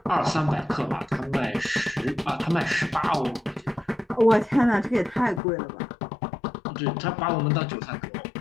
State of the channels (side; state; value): right; drops out; at 5.4 s